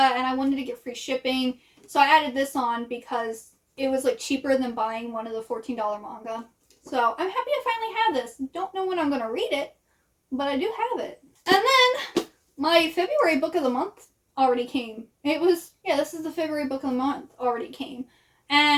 I wanted to get free shipping. So I added this on because it was like cheaper than buying one of the $14 manga. So I'm happy to finally have this. Don't know when I'm going to read it, but I do have it. And then my February book of the month already came. This is the February book of the month already came.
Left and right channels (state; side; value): identical; both; correlation 1.00